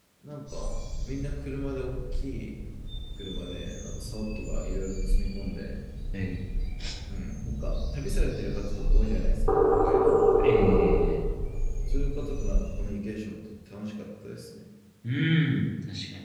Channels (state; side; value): identical; both; correlation 1.00